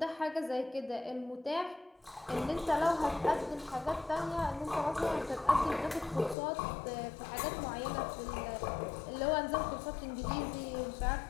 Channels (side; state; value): right; drops out; at 6.4 s